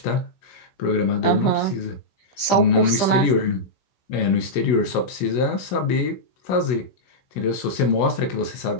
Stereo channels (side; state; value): right; late; 15 ms